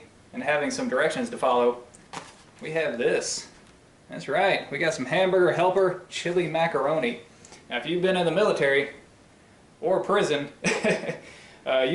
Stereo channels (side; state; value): both; identical; correlation 1.00